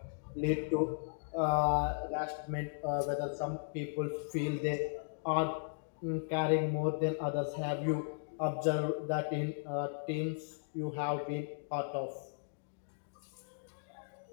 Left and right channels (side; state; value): right; silent; digital silence